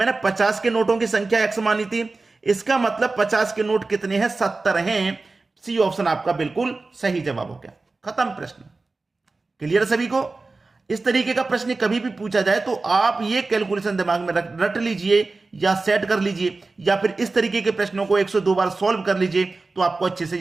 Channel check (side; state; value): left; quieter; 3.6 dB